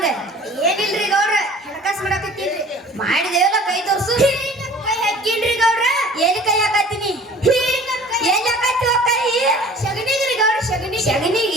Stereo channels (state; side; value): normal; both; correlation 0.47